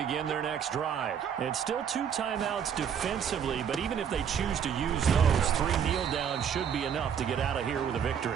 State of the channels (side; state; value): left; quieter; 7.9 dB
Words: their next drive. It's still 2 timeouts defensively, but even if they choose to use those, 3 kneel downs should be enough to get out of here with a